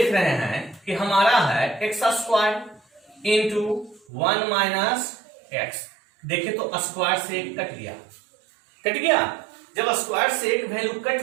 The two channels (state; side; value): drops out; left; at 4.0 s